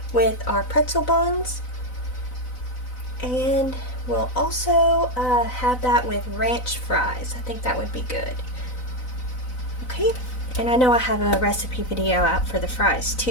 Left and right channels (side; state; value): right; late; 4.0 ms